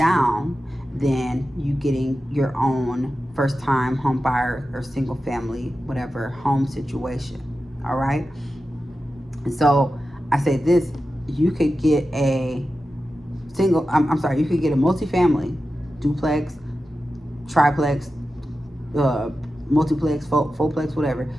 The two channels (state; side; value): normal; both; correlation 0.92